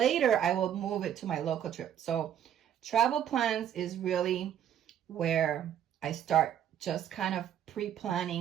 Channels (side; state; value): left; quieter; 10.0 dB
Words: I will move it to my local trip. So travel plans is really where I start just kind of